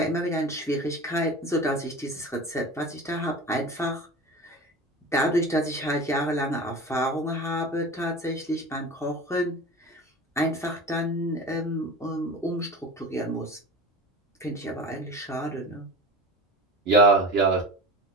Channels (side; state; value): both; normal; correlation 0.32